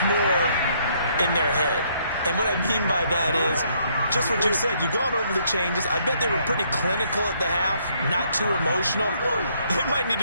more in their head. And what I mean by that is just what you said. You've gone over the changes. I bet they were pretty clinical at the half, not too emotional. They might need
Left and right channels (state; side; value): inverted; both; correlation -0.69